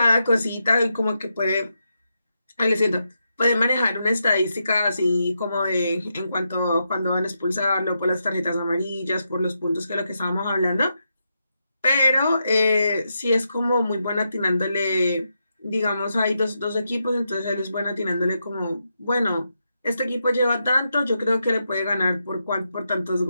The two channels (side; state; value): both; inverted; correlation -0.85